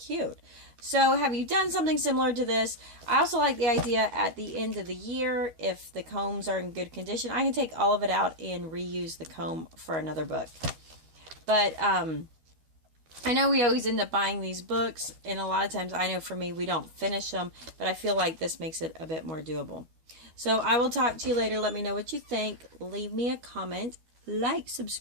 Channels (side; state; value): left; late; 13 ms